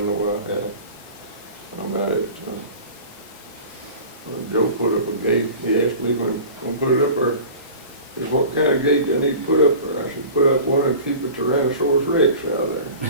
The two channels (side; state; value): both; inverted; correlation -0.39